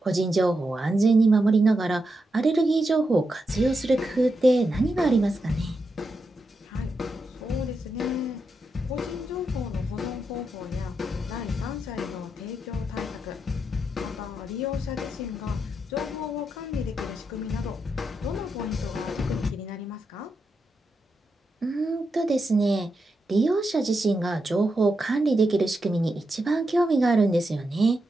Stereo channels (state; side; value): normal; both; correlation 0.85